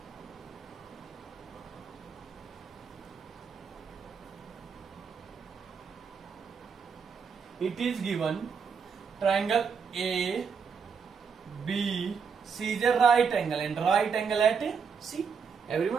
it is given triangle A, B, C is a right angle, and right angle at C.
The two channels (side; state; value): left; quieter; 6.2 dB